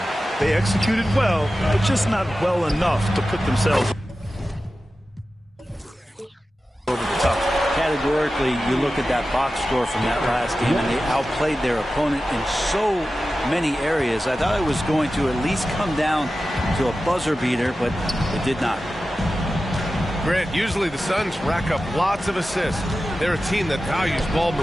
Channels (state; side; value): normal; both; correlation 0.94